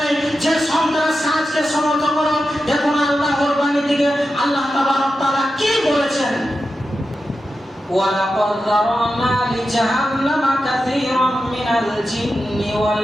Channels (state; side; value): normal; both; correlation 0.91